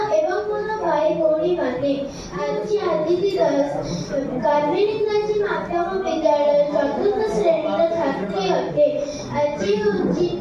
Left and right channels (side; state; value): both; identical; correlation 1.00